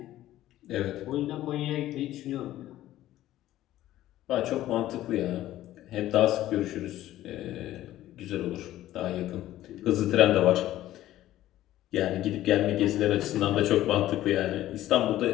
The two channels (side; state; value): right; quieter; 14.1 dB